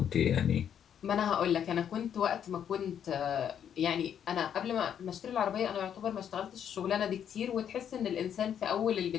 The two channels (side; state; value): right; quieter; 8.9 dB